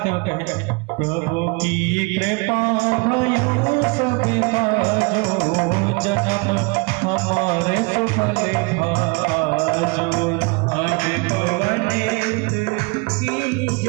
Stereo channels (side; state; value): left; quieter; 28.7 dB